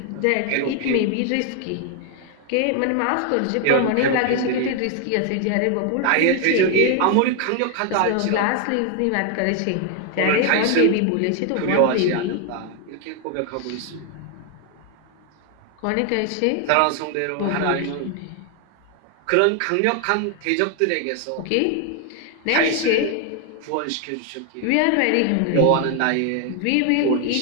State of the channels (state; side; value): different; both; correlation 0.00